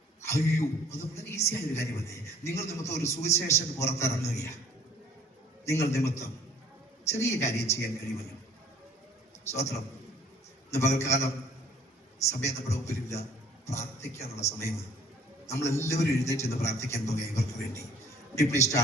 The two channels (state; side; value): normal; both; correlation 0.56